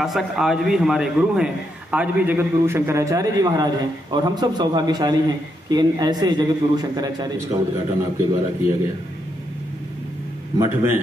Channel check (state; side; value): normal; both; correlation 0.80